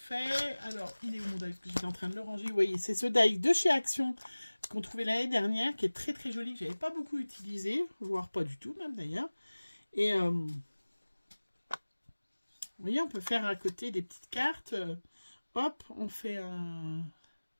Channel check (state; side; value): inverted; both; correlation -1.00